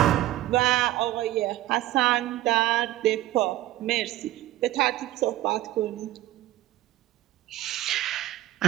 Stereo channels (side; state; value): left; quieter; 15.3 dB